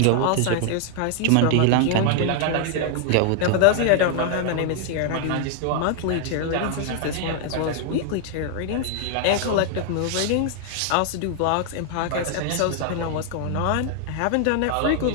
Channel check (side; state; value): both; different; correlation 0.00